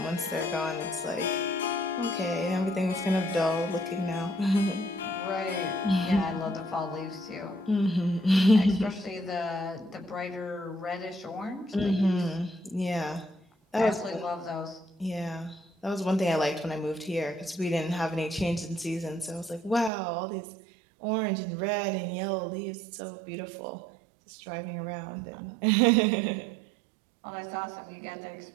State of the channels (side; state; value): left; drops out; at 19.9 s